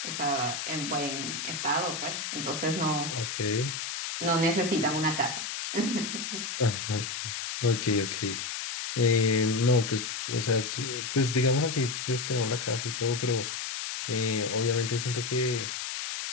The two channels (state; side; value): noise; left; hiss, 4 dB below the sound